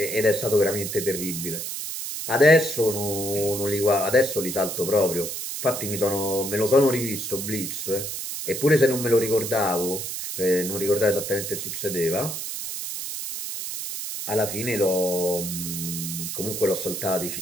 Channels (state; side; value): noise; right; hiss, 5 dB below the sound